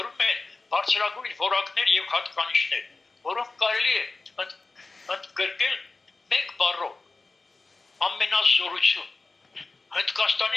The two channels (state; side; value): quieter; right; 3.6 dB